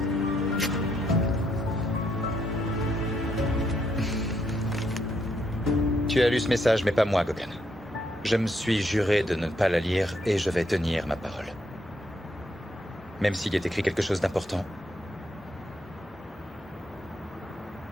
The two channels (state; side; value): normal; both; correlation 0.75